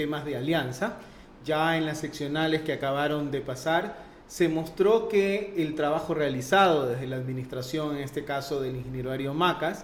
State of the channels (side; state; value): both; identical; correlation 1.00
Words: de alianza. Ya en las seccionales que acabaron de pasar, se mostró que el trabajo realizado desde la administración, en este caso del ingeniero Darío